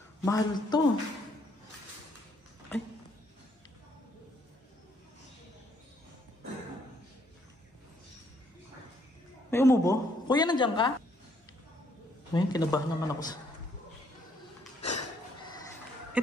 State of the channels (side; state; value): both; normal; correlation 0.69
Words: Mahal to. Ay. May umubo? Kuya, nandiyan ka? Ngayon, kinabahan naman ako sa...